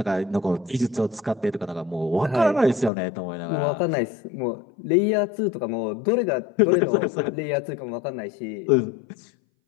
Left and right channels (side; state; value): right; drops out; at 2.9 s